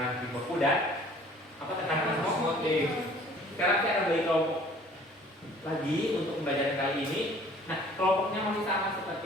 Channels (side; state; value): both; normal; correlation 0.53